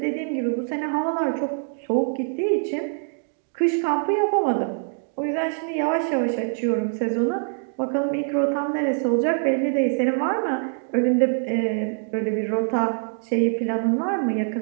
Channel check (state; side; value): silent; left; 62 dB below the other